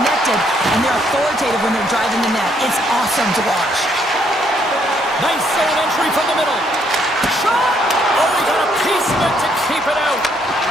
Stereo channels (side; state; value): both; normal; correlation 0.70